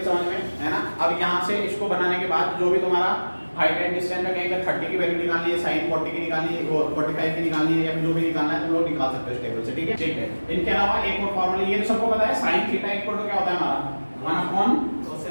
समझ में है ना। अब यहाँ से इसको बनाने के बाद जो भी तुम्हारा हाइट एंड डिस्टेंस में कहीं 30 की वैल्यू निकालनी है, साइन 40 की निकालनी है, 45 की निकालनी है, या फिर जो भी निकालना है तुम लोग निकाल सकते हो इस टेबल से। ठीक है, ठीक है। इनके अलावा एक और फॉर्मूला, ये तो सबको पता है, साइन थीटा इक्वल टू क्या होता है हमारा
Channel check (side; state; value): both; inverted; correlation -1.00